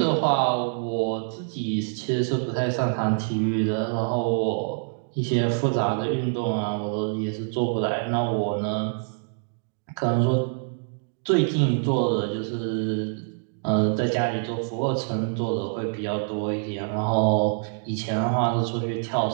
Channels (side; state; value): left; silent; digital silence